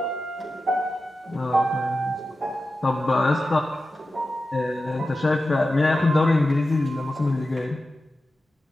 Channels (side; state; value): both; normal; correlation 0.92